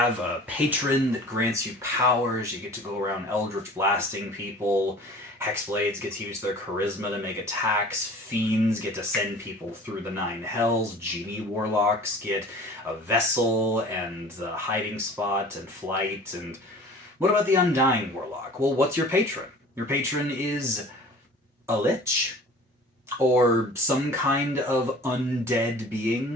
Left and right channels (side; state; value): both; normal; correlation 0.44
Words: a patron that grants you powers, you get to go around eldritch blasting people, hexblades get to use their charisma to make attacks, fiends get to send people through the nine hells, genie warlocks get a vessel and a hiding spot and flight. And what about the Undying Warlock? Well, what's your patron? Your patron is a lich, or some kind of undead